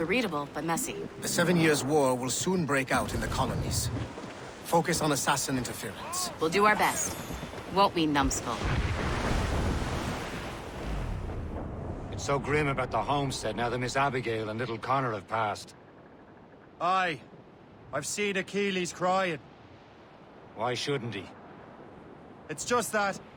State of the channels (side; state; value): both; identical; correlation 1.00